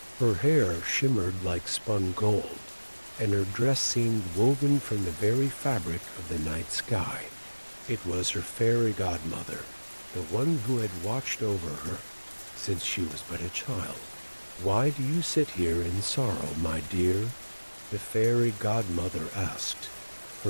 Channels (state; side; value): inverted; both; correlation -1.00